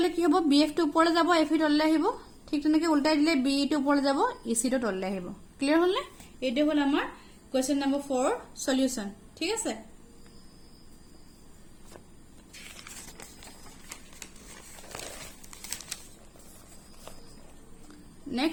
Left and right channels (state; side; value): identical; both; correlation 1.00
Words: কি হ'ব BF টো ওপৰলৈ যাব FE তললৈ আহিব ঠিক তেনেকৈ উল্টাই দিলে BE টো ওপৰলৈ যাব EC টো তললৈ আহিব ক্লিয়াৰ হ'ল নে এটো হ'ল আমাৰ কোৱেশ্চন নম্বৰ 4 সলিউশন ঠিক আছে